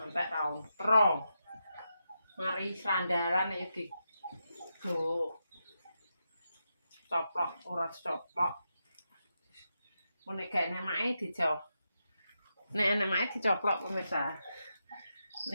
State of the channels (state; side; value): inverted; both; correlation -0.86